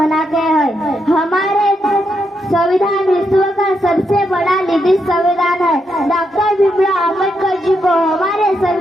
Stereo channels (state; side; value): normal; both; correlation 0.81